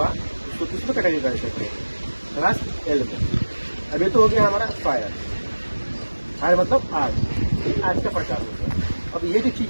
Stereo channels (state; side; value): inverted; both; correlation -1.00